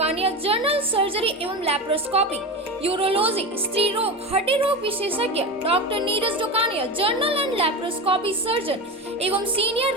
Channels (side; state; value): both; normal; correlation 0.23